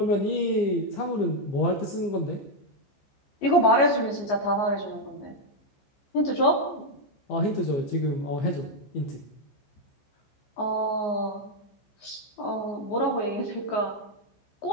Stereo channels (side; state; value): right; late; 14 ms